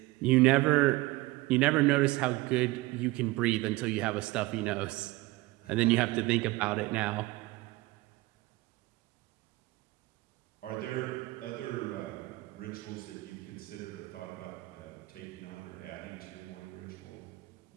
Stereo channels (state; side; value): quieter; left; 20.4 dB